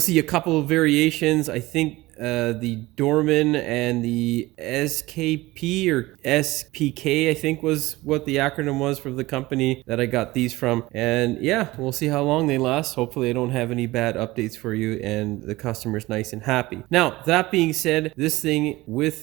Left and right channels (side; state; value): left; quieter; 19.5 dB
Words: a couple of variations. I think the Dorman and the SKP or SPK, I think was what the acronym was for the company that I got these from. And yeah, we'll see how long they last. Hopefully I don't have any bad updates for you and the customer's nice and happy. Now, that being said, this thing